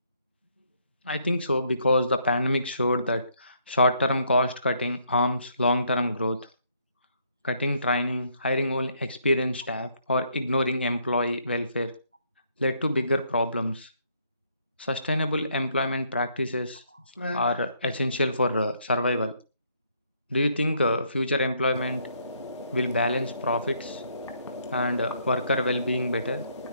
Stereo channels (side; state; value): both; inverted; correlation -0.70